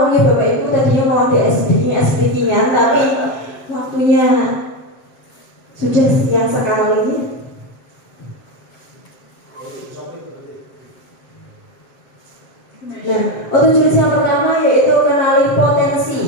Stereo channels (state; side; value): late; right; 7.5 ms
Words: ya Bapak Ibu, tadinya mau ada speaking-an, tapi waktunya sudah siang sekali. Nah, untuk jurus yang pertama yaitu kenali potensi.